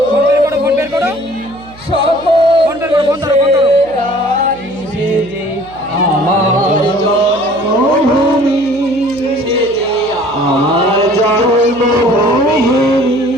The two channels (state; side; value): noise; right; hum, 22 dB below the sound